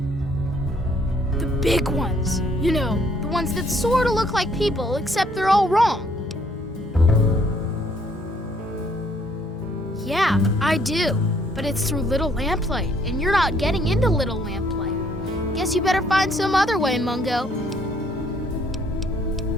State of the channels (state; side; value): normal; both; correlation 0.65